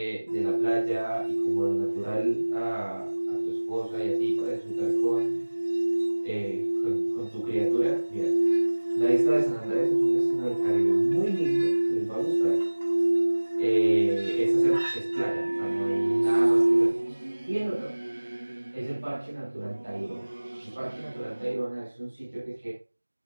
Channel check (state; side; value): inverted; both; correlation -1.00